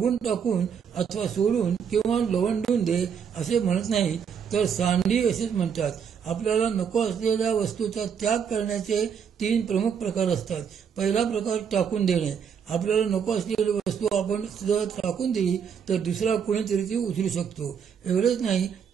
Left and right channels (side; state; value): left; quieter; 7.3 dB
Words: टाकून अथवा सोडून किंवा लवंडून दे असे म्हणत नाही, तर सांडी असेच म्हणतात. आपल्याला नको असलेल्या वस्तूचा त्याग करण्याचे 3 प्रमुख प्रकार असतात. पहिला प्रकार टाकून देणे. आपल्याला नको असलेली वस्तू आपण जर टाकून दिली तर दुसरा कोणीतरी ती उचलू शकतो. एवढेच नाही